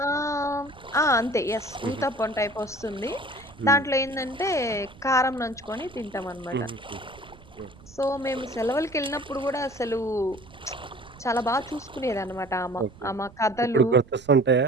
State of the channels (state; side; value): noise; right; rumble, 22 dB below the sound